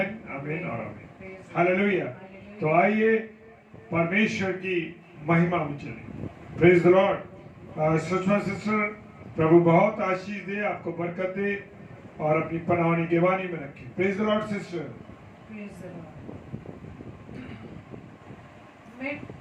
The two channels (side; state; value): both; identical; correlation 1.00